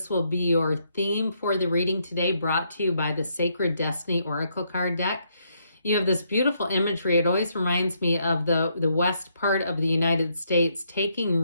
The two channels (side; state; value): both; inverted; correlation -0.75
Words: will be your theme for the reading today, brought to you by the Sacred Destiny Oracle card deck. You have this beautiful imagery. It always reminds me of the west part of the United States, taking